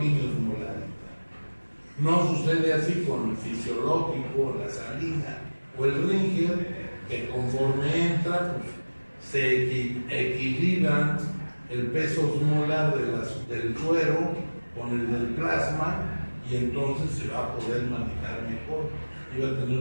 osmolaridad. No sucede así con el fisiológico, la salina o el Ringer, que conforme entra, pues, se equilibran el peso osmolar del suero con el del plasma y entonces se va a poder manejar mejor y va a tener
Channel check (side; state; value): both; inverted; correlation -1.00